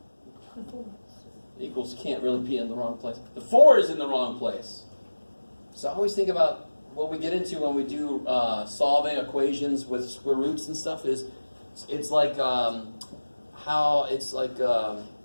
Equals can't really be in the wrong place. The 4 is in the wrong place. So I always think about what we get into when we do solving equations with square roots and stuff is it's like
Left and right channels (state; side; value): inverted; both; correlation -1.00